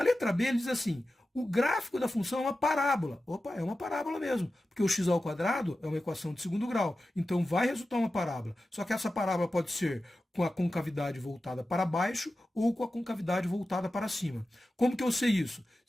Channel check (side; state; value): both; normal; correlation 0.93